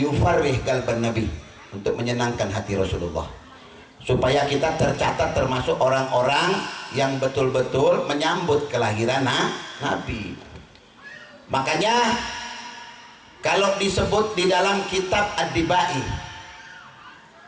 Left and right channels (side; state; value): both; identical; correlation 1.00